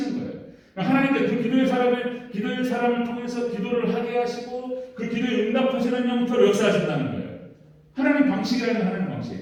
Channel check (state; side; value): identical; both; correlation 1.00